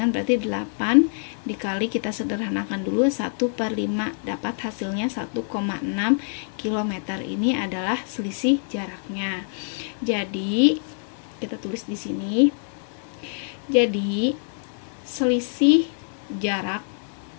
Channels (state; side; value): silent; right; 61 dB below the other